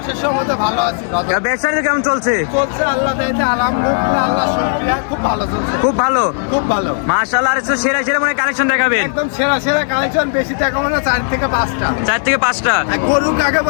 অশেষ রহমতে ভালো আছি। কাকা ব্যবসা কেমন চলছে? চলছে আল্লাহ দয়াতে আলহামদুলিল্লাহ, আল্লাহ শুকরিয়া, খুব ভালো চলছে। খুব ভালো, খুব ভালো। মাশাআল্লাহ। আর সেরা সেরা মনে কালেকশন দেখাবেন? একদম সেরা সেরা কালেকশন, বেশি টাকা মানে 4 থেকে 5টা। 4 থেকে 5টা গরু কাকে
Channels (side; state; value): right; silent; digital silence